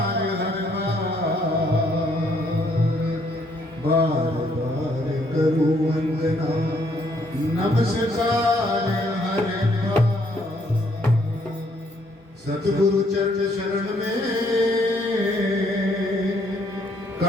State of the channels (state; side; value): normal; both; correlation 0.68